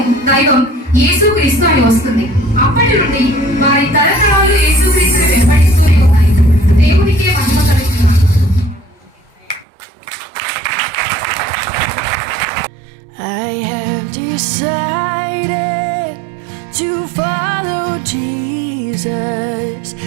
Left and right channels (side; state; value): left; drops out; at 9.7 s